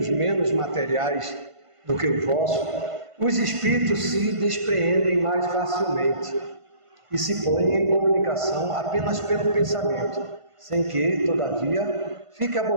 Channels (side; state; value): left; late; 1.5 ms